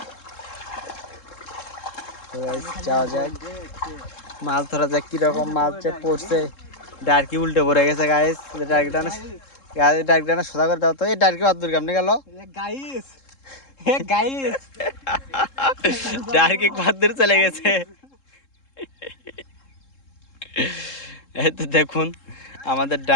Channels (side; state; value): right; late; 3.7 ms